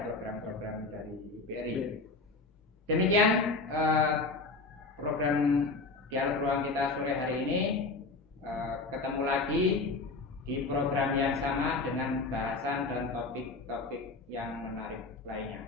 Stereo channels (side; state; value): right; quieter; 3.6 dB